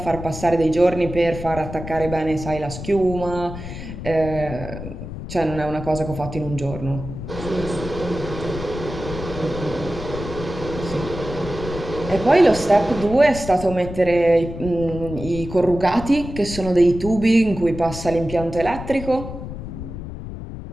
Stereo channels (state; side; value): noise; left; rumble, 9 dB below the sound